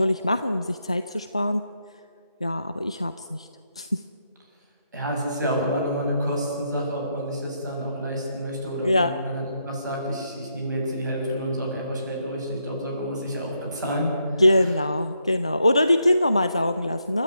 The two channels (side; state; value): both; inverted; correlation -0.79